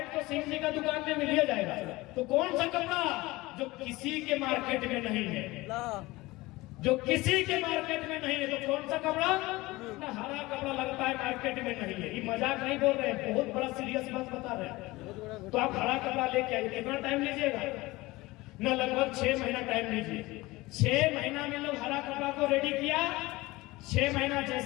तो सिंह जी का दुकान में मिल जाएगा तो कौन सा कपड़ा जो किसी के मार्केट में नहीं है जो किसी के मार्केट में नहीं है तो कौन सा कपड़ा ना हरा कपड़ा लगता है मार्केट में नहीं है ये मजाक नहीं बोल रहे हैं बहुत बड़ा सीरियस बात बता रहे हैं तो आप हरा कपड़ा लेके आइए कितना टाइम लीजिएगा ना लगभग 6 महीना टाइम लीजिए 6 महीना में लोग हरा कपड़ा को रेडी किया 6 महीना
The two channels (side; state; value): right; quieter; 20.5 dB